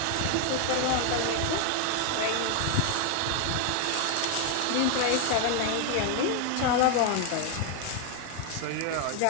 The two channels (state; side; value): different; both; correlation 0.00